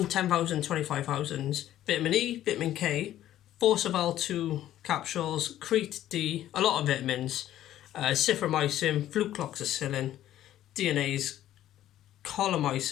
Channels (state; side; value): quieter; right; 12.7 dB